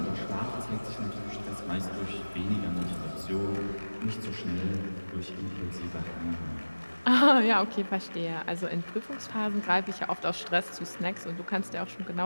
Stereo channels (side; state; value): both; inverted; correlation -1.00